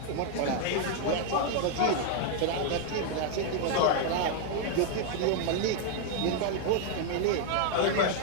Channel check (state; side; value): different; both; correlation 0.00